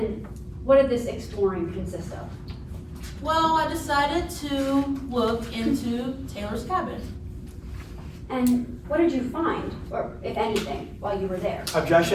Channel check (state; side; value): identical; both; correlation 1.00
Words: what did this exploring consist of? Well, I decided to look into Taylor's cabin. And what did you find, or if anything, while you were there?